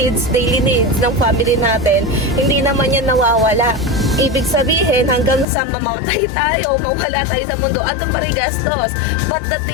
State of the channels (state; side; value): drops out; right; at 5.5 s